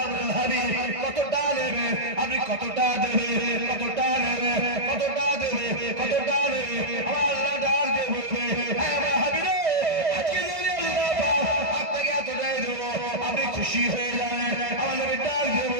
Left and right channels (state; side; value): late; left; 1.5 ms